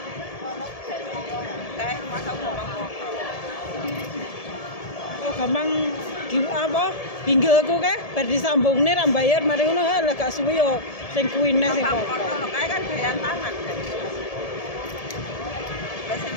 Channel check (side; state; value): right; late; 1.7 ms